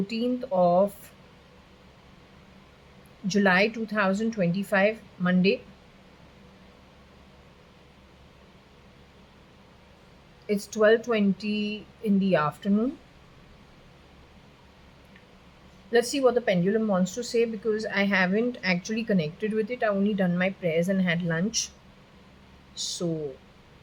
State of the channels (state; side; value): identical; both; correlation 1.00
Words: of July 2025, Monday. It's 12:20 in the afternoon. Let's see what the pendulum wants to say because I haven't actually connected with it. I only done my prayers and had lunch. So